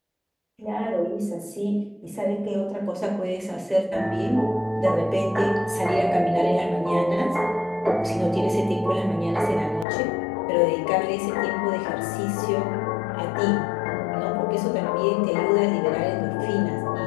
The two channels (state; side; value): drops out; right; at 9.9 s